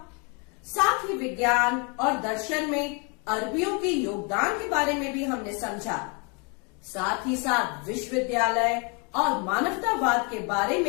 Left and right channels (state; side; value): quieter; right; 33.3 dB